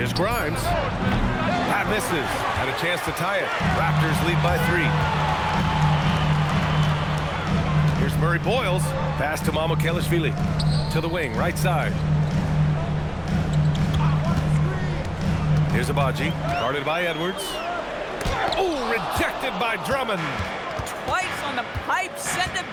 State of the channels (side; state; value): both; identical; correlation 1.00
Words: Grimes. That misses. Had a chance to tie it. Raptors lead by 3. Here's Murray Boyles. Pass to Mamukelashvili. To the wing, right side. Here's Abaji. Guarded by Edwards. Oh, rejected by Drummond. Twice on the pipe. Send it